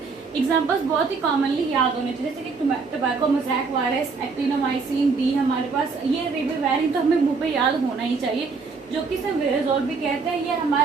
एग्जाम्पल्स बहुत ही कॉमनली याद होने चाहिए, जैसे कि tobacco mosaic virus, actinomycin D, हमारे पास ये रिबेवेरिन तो हमें मुंह पे याद होना ही चाहिए, जो कि इसे विरेजोल भी कहते हैं। ये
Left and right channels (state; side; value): quieter; left; 4.6 dB